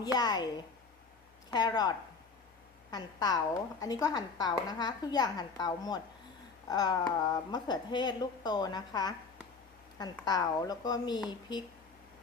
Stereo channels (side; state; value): right; quieter; 4.7 dB